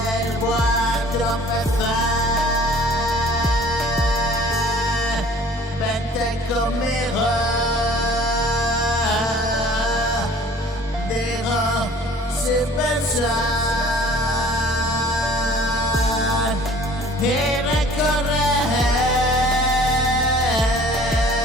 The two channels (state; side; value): normal; both; correlation 0.50